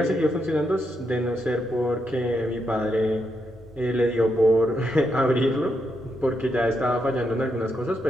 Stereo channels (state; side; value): normal; both; correlation 0.81